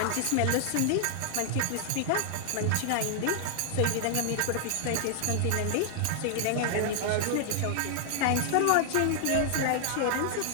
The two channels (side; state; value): both; different; correlation 0.00